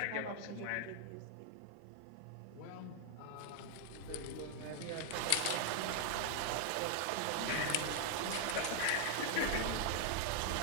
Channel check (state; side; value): different; both; correlation 0.00